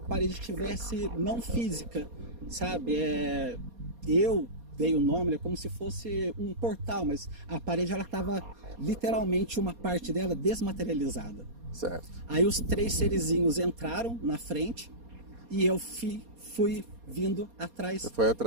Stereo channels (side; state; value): left; late; 4.2 ms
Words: parede tivesse não física, sabe? Eu dei o nome, como se fosse um portal, mas a parede ela estava literalmente uma parte dela desmaterializada. Certo. Aí os 3 serizinhos entraram na frente e eu fui vindo atrás